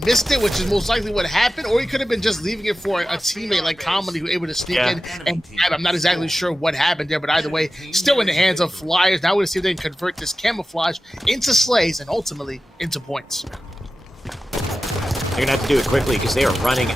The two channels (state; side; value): normal; both; correlation 0.94